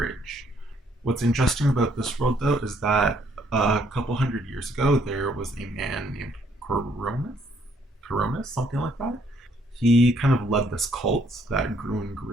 What's interesting about this world, though, is that a couple hundred years ago, there was a man named Coronis, something like that. he kind of led this cult that grew and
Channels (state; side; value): normal; both; correlation 0.68